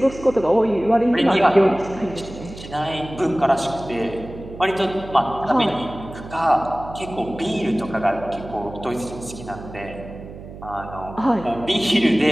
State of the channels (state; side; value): noise; right; hum, 14 dB below the sound